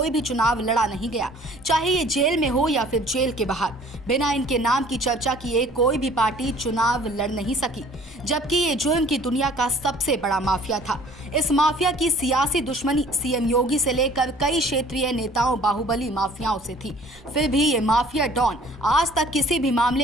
भी चुनाव लड़ा नहीं गया, चाहे ये जेल में हो या फिर जेल के बाहर। बिना इनके नाम की चर्चा किए कोई भी पार्टी चुनाव लड़ नहीं सकी, जबकि ये जुल्म की दुनिया का सबसे बड़ा माफिया था। इस माफिया की सियासी दुश्मनी सीएम योगी से लेकर कई क्षेत्रीय नेताओं, बाहुबली माफियाओं से थी। फिर भी ये माफिया डॉन आज तक किसी भी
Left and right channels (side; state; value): both; normal; correlation 0.52